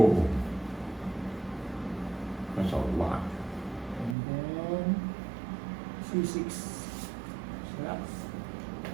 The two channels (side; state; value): left; drops out; at 4.2 s